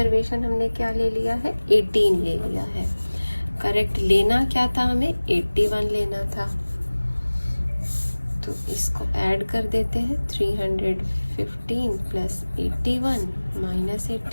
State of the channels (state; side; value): inverted; both; correlation -1.00